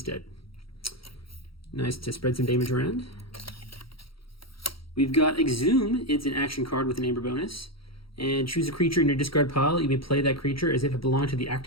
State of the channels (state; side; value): late; right; 0.75 ms